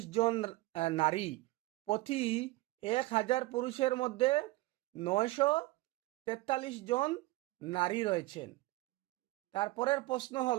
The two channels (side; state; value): left; quieter; 19.6 dB